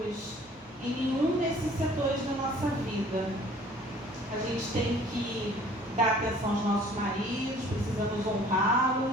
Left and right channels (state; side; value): normal; both; correlation 0.52